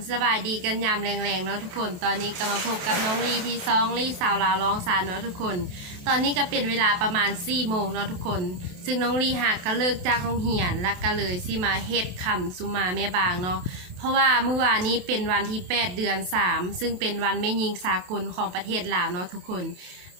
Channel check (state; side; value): late; left; 28 ms